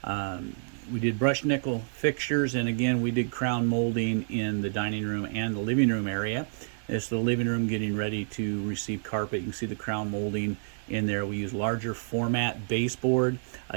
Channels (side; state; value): left; silent; digital silence